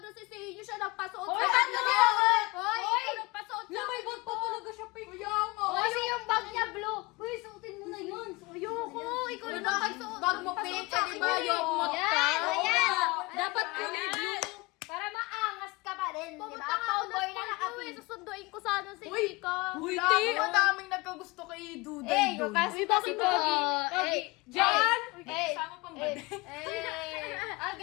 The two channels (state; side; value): quieter; right; 24.1 dB